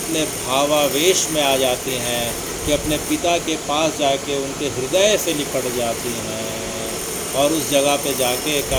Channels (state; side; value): identical; both; correlation 1.00